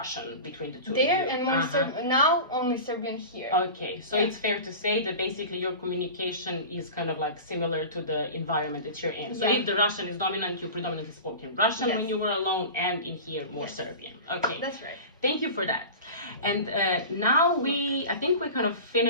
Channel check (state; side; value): inverted; both; correlation -0.32